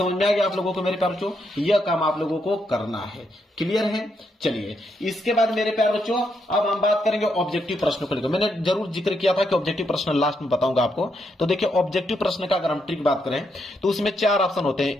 में आ गया आप लोगों को मेरे प्यारे बच्चों? यह काम आप लोगों को करना है। क्लियर है? चलिए इसके बाद मेरे प्यारे बच्चों अब हम बात करेंगे ऑब्जेक्टिव प्रश्नों को लेकर। मैंने जरूर जिक्र किया था कि ऑब्जेक्टिव प्रश्न लास्ट में बताऊंगा आपको। तो देखिए ऑब्जेक्टिव प्रश्न का अगर हम ट्रिक बात करें तो उसमें 4 ऑप्शन होते हैं,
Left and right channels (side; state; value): both; normal; correlation 0.79